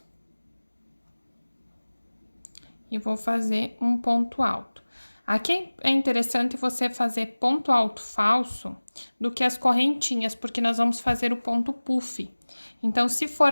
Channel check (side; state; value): both; inverted; correlation -1.00